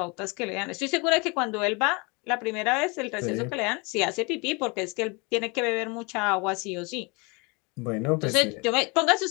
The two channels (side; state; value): right; quieter; 29.2 dB